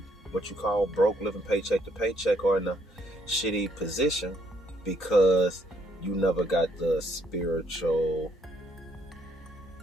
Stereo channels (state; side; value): normal; both; correlation 0.70